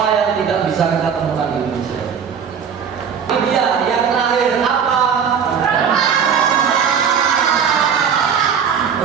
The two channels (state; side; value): quieter; left; 7.2 dB